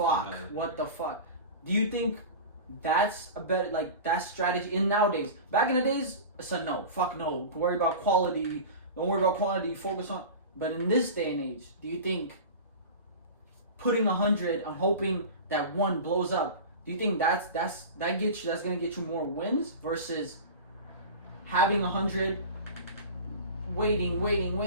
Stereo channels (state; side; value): inverted; both; correlation -0.32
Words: what the fuck? Do you think that's a better, like, that strategy in nowadays? Back in the days, it's a no. Fuck no. Worry about quality. Don't worry about quantity. Focus on. But in this day and age, do you think putting 100 and hoping that one blows up, do you think that's gonna get you more wins versus having 100, waiting,